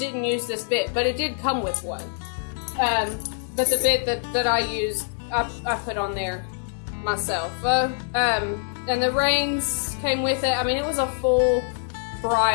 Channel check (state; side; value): silent; right; digital silence